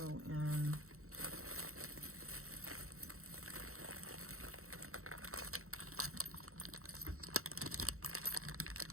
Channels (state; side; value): late; left; 0.63 ms